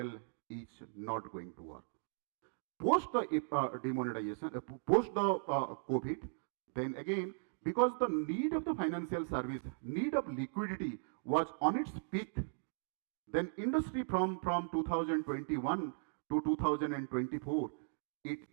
is not going to work. Post the demonetization, post the COVID, then again, because the need of the financial service, need of liquidity was on its peak, then industry from 2021 to 2024,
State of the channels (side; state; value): left; silent; digital silence